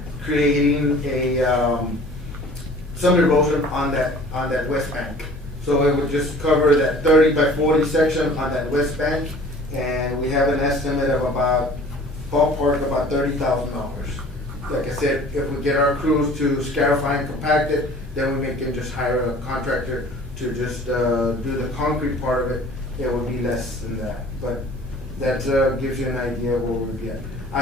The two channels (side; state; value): both; normal; correlation 0.48